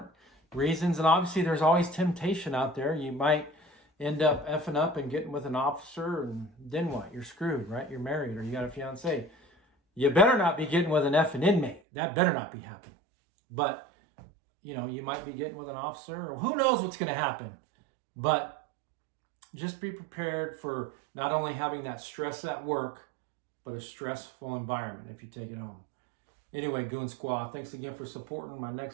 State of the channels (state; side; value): drops out; left; at 11.8 s